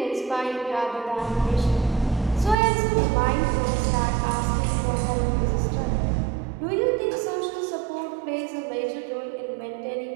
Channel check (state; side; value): drops out; left; at 2.6 s